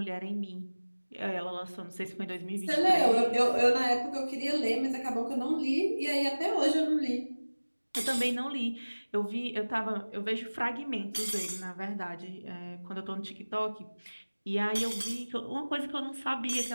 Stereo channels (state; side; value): inverted; both; correlation -1.00